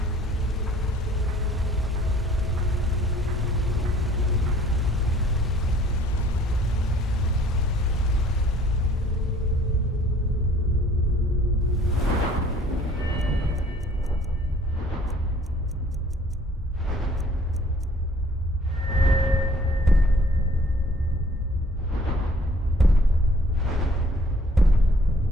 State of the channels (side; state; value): both; normal; correlation 0.57